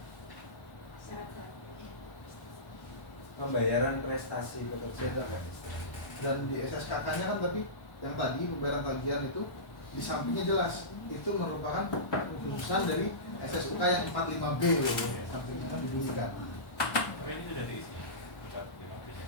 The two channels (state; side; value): late; right; 1.1 ms